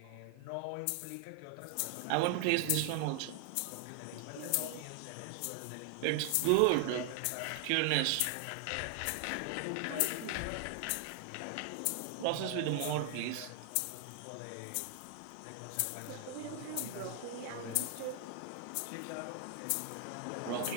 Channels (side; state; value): both; different; correlation 0.00